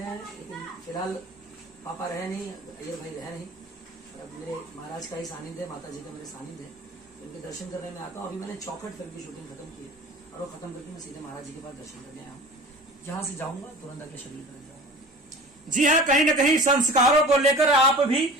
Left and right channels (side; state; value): both; normal; correlation 0.40